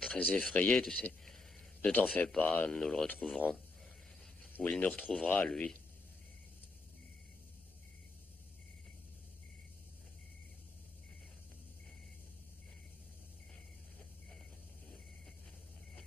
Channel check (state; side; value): quieter; right; 3.3 dB